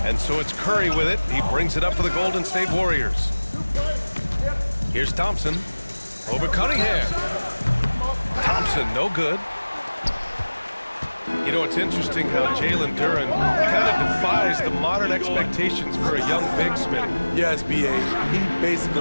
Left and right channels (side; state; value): both; inverted; correlation -1.00